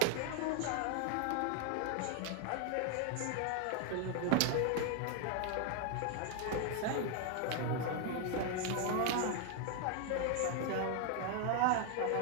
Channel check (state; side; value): different; both; correlation 0.00